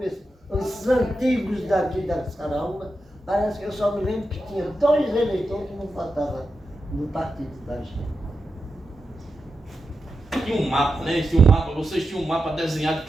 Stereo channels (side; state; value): both; normal; correlation 0.89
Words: os antigos daqui das Caraúbas, parece que eu só me lembro que tinha 2 eleitores que não votavam no partido da gente. Tinha um mapa, né? Vocês tinham um mapa desenhado